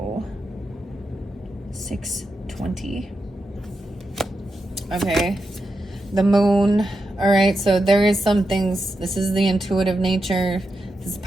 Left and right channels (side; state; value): both; normal; correlation 0.87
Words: 620. Okay. The Moon. All right. So there is some things. This is the intuitive nature. This is